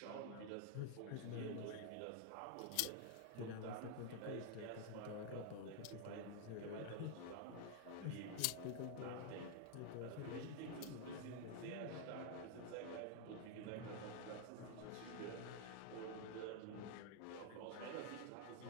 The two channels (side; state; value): both; different; correlation 0.00